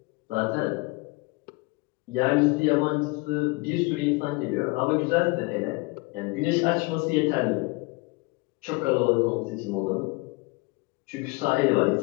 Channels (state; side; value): quieter; right; 25.9 dB